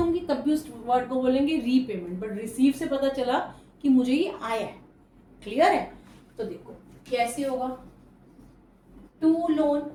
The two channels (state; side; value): identical; both; correlation 1.00